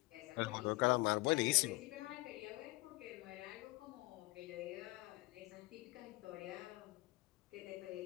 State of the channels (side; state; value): right; quieter; 23.1 dB